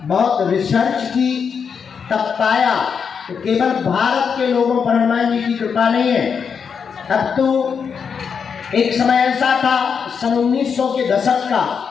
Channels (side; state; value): right; quieter; 6.5 dB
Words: बहुत रिसर्च की तब पाया तो केवल भारत के लोगों पर हनुमान जी की कृपा नहीं है। अब तो एक समय ऐसा था सन 1900 के दशक का,